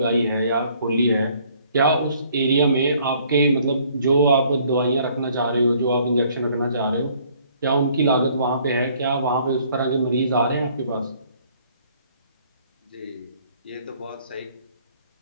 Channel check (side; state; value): both; inverted; correlation -0.61